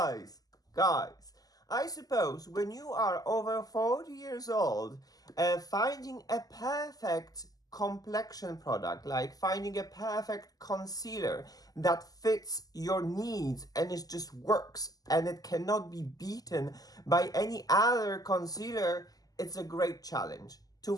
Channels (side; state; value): right; late; 0.18 ms